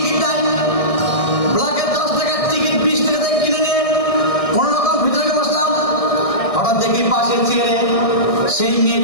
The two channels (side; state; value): right; late; 1.6 ms